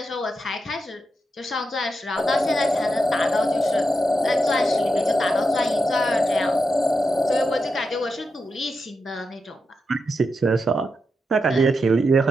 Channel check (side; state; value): both; normal; correlation 0.86